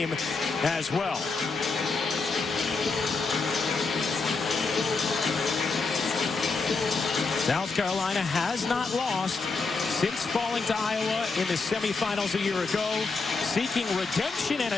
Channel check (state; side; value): quieter; right; 4.2 dB